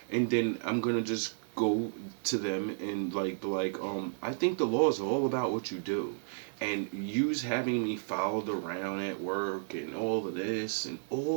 And then I'm gonna just go to them and I think the law is all about what you do. And use having me followed around at work and all of this and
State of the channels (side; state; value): left; silent; digital silence